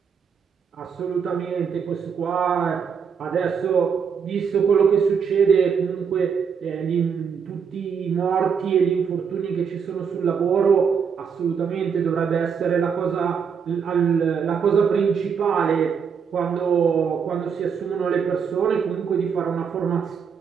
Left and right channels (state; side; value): quieter; left; 6.6 dB